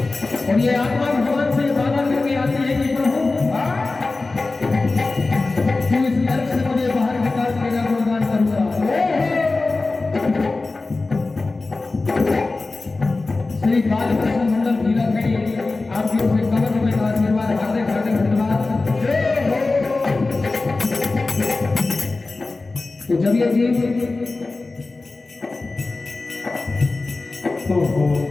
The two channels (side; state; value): right; quieter; 3.5 dB